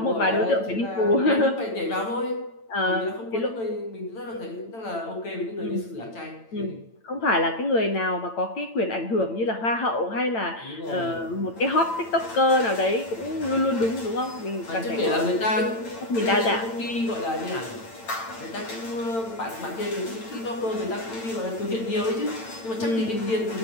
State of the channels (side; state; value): right; late; 8.9 ms